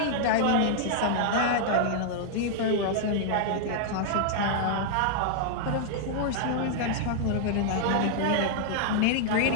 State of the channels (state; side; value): different; both; correlation -0.01